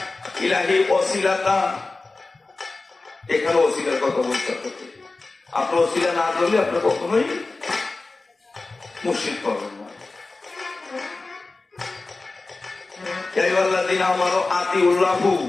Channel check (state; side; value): quieter; right; 3.5 dB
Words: ইলাহি ওয়াসিলাতা। এখানে ওসিলার কথা বলতে হবে। আপনি ওসিলা না করলে আপনি কখনোই মুর্শিদ পাবেন না। ইয়া আইয়ুহাল্লাযিনা আমানু আতিউল্লাহু,